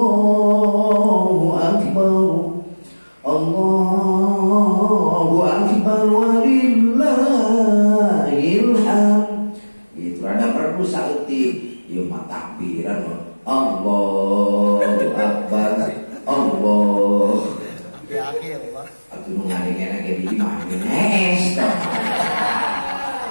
Akbar, Allahu Akbar, walillahil hamd. Itu ada perlu sakti, yo takbiran Allahu Akbar, Allah. Di akhir, Pak. Aku mengalihkan lagi di mana?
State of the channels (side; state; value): both; inverted; correlation -1.00